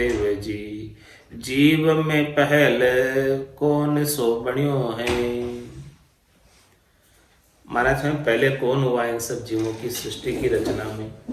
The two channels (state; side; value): identical; both; correlation 1.00